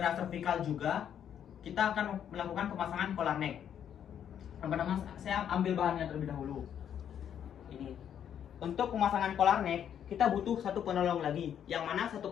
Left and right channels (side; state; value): right; quieter; 9.2 dB